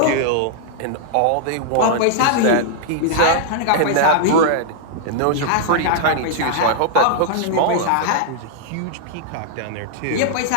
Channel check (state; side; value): different; both; correlation -0.01